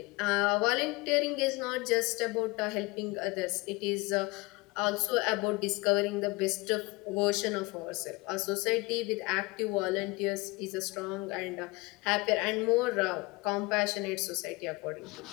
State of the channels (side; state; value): right; quieter; 24.2 dB